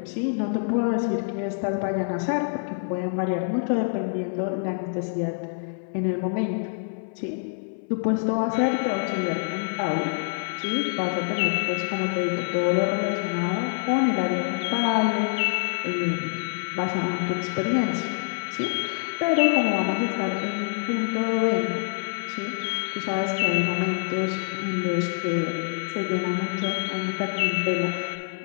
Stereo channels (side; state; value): right; silent; 59 dB below the other